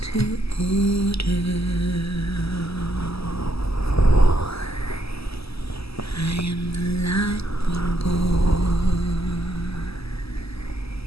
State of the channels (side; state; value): right; late; 0.77 ms